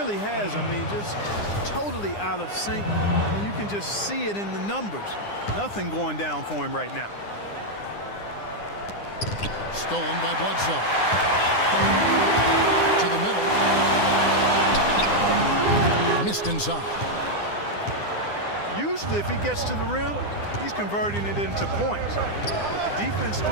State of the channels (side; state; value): right; late; 9.8 ms